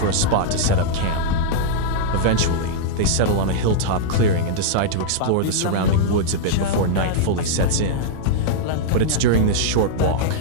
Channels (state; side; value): different; both; correlation -0.02